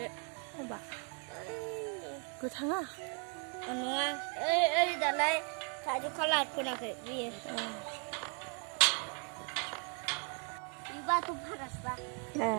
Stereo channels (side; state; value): left; quieter; 39.7 dB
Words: माबा गोथाङा Nua. Dalai kaju kalah pun aku dia. Iba tu panas bah. ए